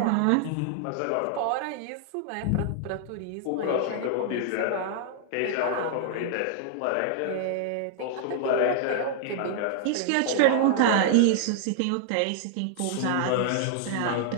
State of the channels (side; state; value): both; different; correlation 0.00